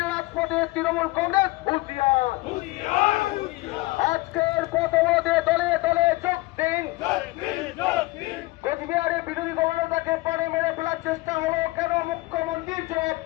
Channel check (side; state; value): right; quieter; 21.5 dB